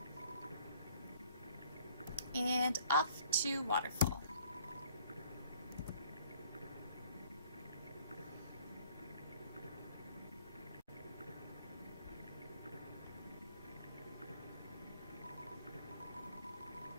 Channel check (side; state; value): both; inverted; correlation -0.57